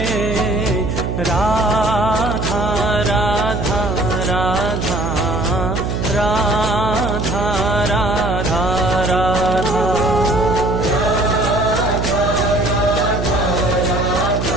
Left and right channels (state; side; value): noise; right; hum, 2 dB below the sound